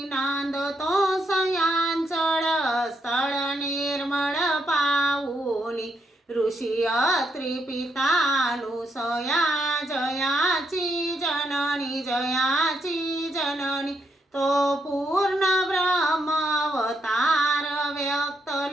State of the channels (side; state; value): both; normal; correlation 0.78